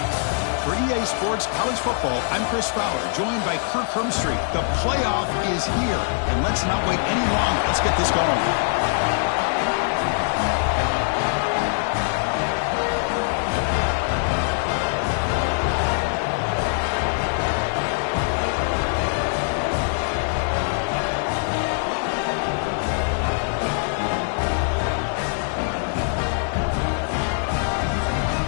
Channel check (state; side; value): silent; right; digital silence